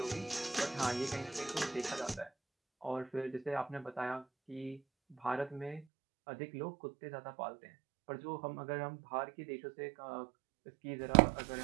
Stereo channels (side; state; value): left; drops out; at 5.9 s